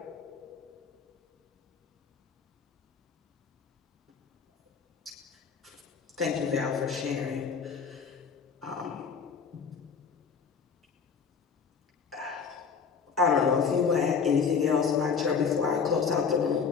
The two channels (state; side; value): quieter; right; 6.0 dB